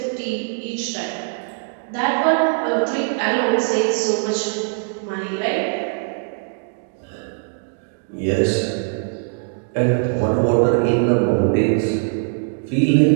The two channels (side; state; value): left; silent; 65 dB below the other